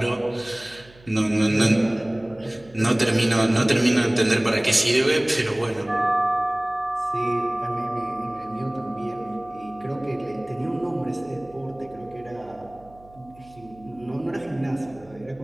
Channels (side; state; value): right; noise; hum, 25 dB below the sound